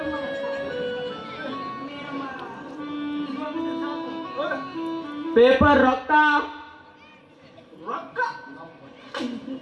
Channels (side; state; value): both; identical; correlation 1.00